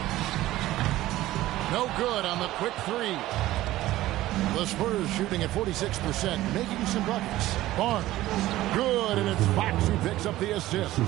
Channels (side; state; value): left; quieter; 15.8 dB